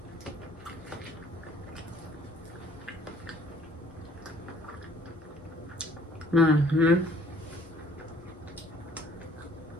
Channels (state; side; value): normal; both; correlation 0.58